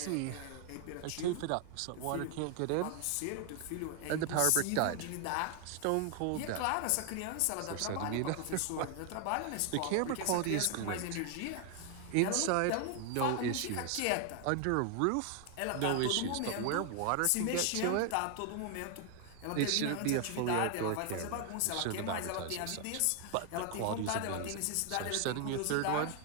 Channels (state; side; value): different; both; correlation 0.00